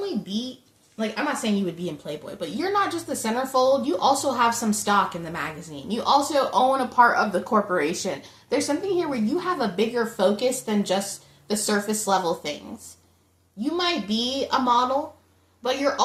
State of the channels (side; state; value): both; identical; correlation 1.00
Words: be, like, I'm not saying you would be in Playboy, but you're not just the centerfold. You also have some stock in the magazine. You also own a part of the corporation. There's something here where you have a bigger focus than just the surface level things. You might be a model, but you're